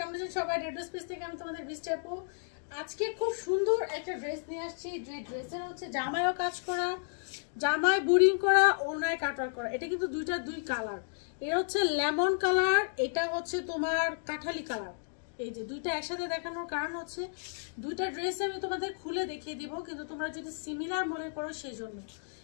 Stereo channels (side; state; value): right; silent; digital silence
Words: আছেন সবাই? ড্রেস পিস থেকে আমি তোমাদের বৃষ্টি আপু। আজকে খুব সুন্দর একটা ড্রেস নিয়ে আসছি। যে ড্রেসের হচ্ছে জামায়ও কাজ করা, জামায় বুরিং করা, ওড়নায় কাটওয়ার্ক করা। এটা কিন্তু দুই কালার। এটা হচ্ছে লেমন কালার, এটা হচ্ছে তোমার কাঠালি কালার। এই যে দুইটা একসাথে দেখানোর কারণ হচ্ছে দুইটা ড্রেস আমি তোমাদের খুলে দেখিয়ে দিব, কিন্তু তোমরা যদি সিমিলার মনে করো সেই জন্য।